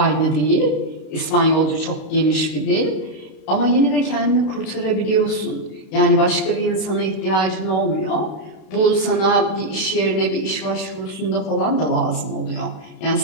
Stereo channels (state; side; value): late; right; 32 ms